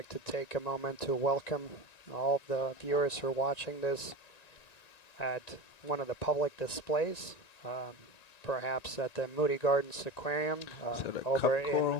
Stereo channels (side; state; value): right; late; 1.9 ms